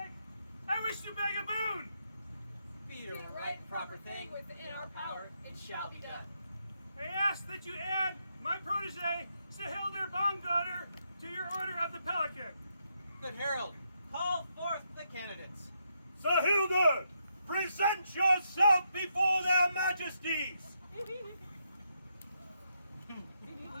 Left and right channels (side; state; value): both; inverted; correlation -0.79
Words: I wish to beg a boon. Be the right and proper thing within our power, it shall be done. I ask that you add my protege, Saehildr barngodr, to your order of the Pelican. Good Herald, call forth the candidates. Saehildr, present yourself before their majesties. I've